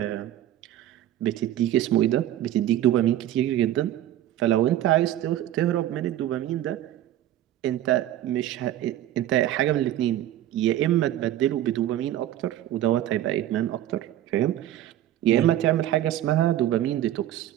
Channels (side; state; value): left; quieter; 12.7 dB